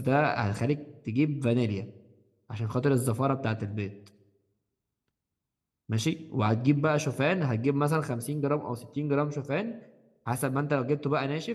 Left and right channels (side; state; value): both; identical; correlation 1.00